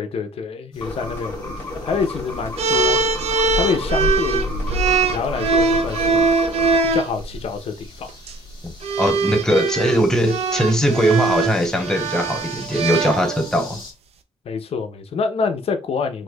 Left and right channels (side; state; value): both; normal; correlation 0.54